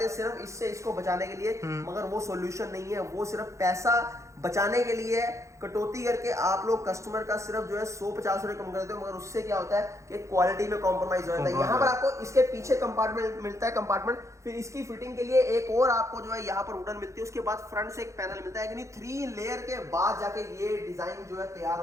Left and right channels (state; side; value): late; left; 0.15 ms